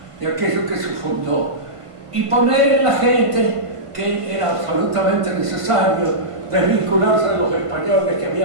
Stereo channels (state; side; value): late; left; 1.5 ms